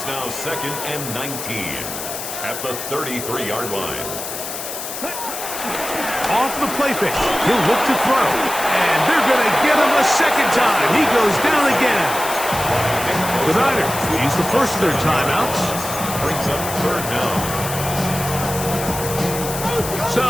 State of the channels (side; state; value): left; noise; hiss, 7 dB below the sound